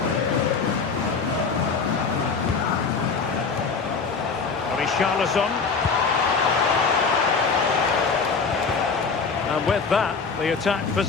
Richarlison. And with that, the attack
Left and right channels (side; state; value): right; quieter; 5.0 dB